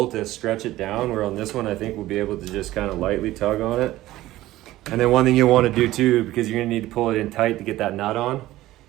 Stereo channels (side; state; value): left; quieter; 16.0 dB